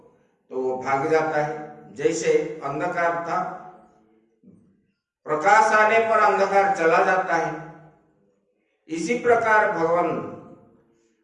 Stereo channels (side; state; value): both; identical; correlation 1.00